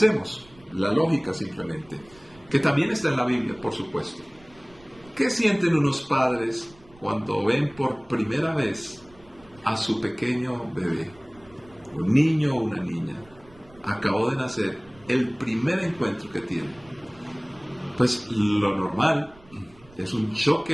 La lógica simplemente, que también está en la Biblia, por supuesto. ¿Qué sienten unos padres cuando ven por primera vez a su pequeño bebé? Un niño o una niña. Acabó de nacer, el primer encuentro que tienen. Pues lo normal es un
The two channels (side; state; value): right; noise; rumble, 26 dB below the sound